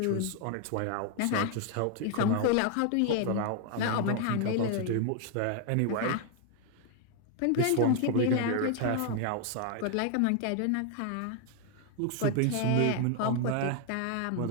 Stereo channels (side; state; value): both; different; correlation 0.00